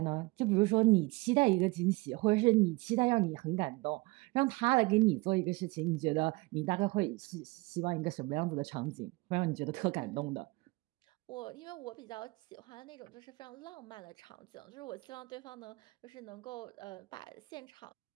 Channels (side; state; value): left; quieter; 23.9 dB